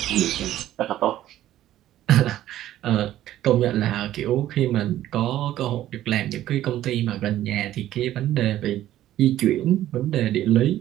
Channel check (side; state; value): left; quieter; 13.3 dB